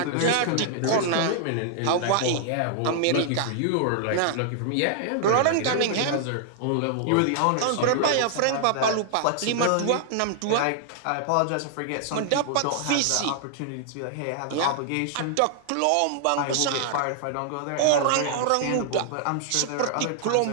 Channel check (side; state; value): both; different; correlation -0.01